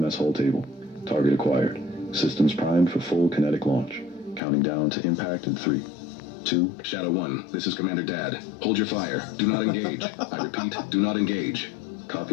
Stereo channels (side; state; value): right; drops out; at 4.4 s